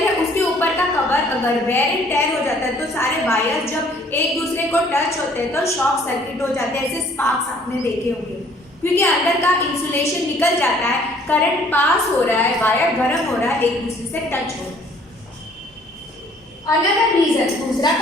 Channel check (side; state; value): both; normal; correlation 0.58